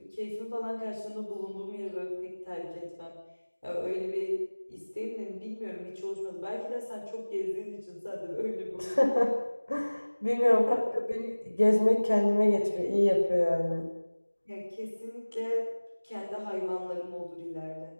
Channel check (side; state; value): both; inverted; correlation -1.00